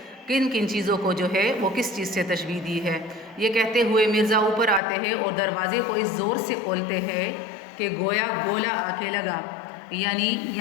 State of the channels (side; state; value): right; drops out; at 4.8 s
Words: किन किन चीज़ों को जो है वो किस चीज़ से तशबीह दी है। ये कहते हुए मिर्ज़ा ऊपर आते हैं और दरवाज़े को इस ज़ोर से खोलते हैं कि गोया गोला आके लगा। यानी